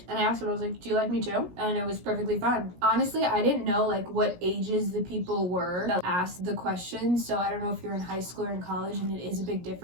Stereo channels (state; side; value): late; left; 17 ms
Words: and I asked him, I was like, do you like me too? And it was perfectly fine. Honestly, I didn't know like what ages the people were that asked the questions, so I don't know if you're in high school or in college and it is a big